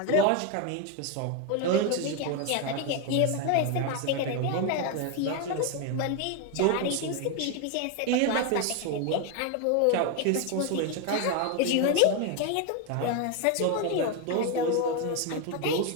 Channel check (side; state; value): both; different; correlation 0.01